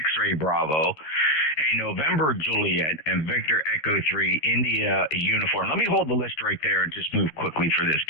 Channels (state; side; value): late; right; 13 ms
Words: Bravo, a November Juliet, and Victor Echo 3 India uniform. Let me hold the list right there and just move quickly for this.